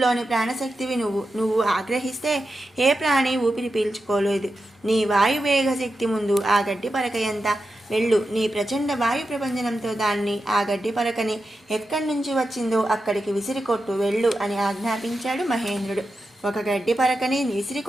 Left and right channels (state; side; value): normal; both; correlation 0.90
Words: ప్రాణశక్తివి నువ్వు ఆగ్రహిస్తే ఏ ప్రాణి ఊపిరి పీల్చుకోలేదు. నీ వాయువేగ శక్తి ముందు ఆ గడ్డి పరక ఎంత? వెళ్ళు, నీ ప్రచండ వాయు ప్రపంచనంతో దాన్ని, ఆ గడ్డి పరకని ఎక్కడి నుంచి వచ్చిందో అక్కడికి విసిరికొట్టు, వెళ్ళు అని ఆజ్ఞాపించాడు మహేంద్రుడు. ఒక గడ్డి పరకని విసిరి